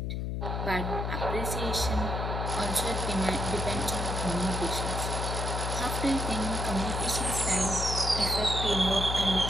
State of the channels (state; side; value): noise; left; hum, 2 dB below the sound